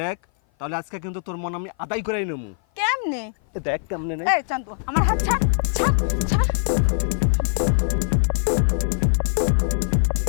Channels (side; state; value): right; silent; 56 dB below the other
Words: দেখ, তাহলে আজকে কিন্তু তোর মন আমি আদায় করেই নেবো। কেমনে? দেখ কেমনে নেই। এই চান্দু, আমার হাত ছাড়, ছাড়, ছাড়।